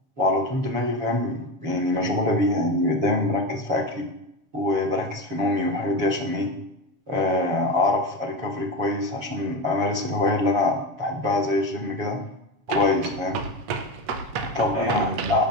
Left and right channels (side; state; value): left; late; 7.5 ms